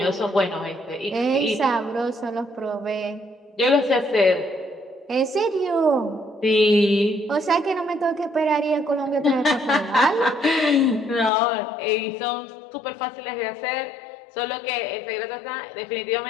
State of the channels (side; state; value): right; drops out; at 11.3 s